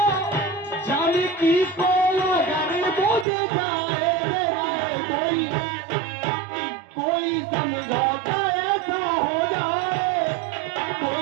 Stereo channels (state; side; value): drops out; left; at 3.2 s